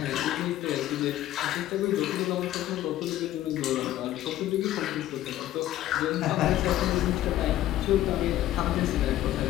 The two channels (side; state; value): right; quieter; 13.7 dB